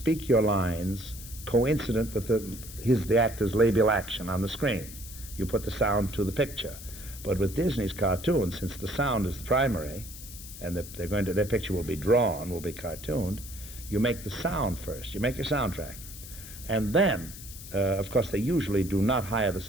your lines coincident with the actor's labial action on the screen. You put the sound to the picture. But with Disney's cartoons, since the sound is the primary, and their picture will be drawn, will be cartooned, You make the sound first. You make your soundtrack. And then, of course, they usually do not hire the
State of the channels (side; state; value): left; noise; hiss, 14 dB below the sound